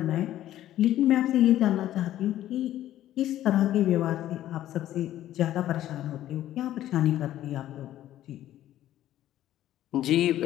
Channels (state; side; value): quieter; right; 13.0 dB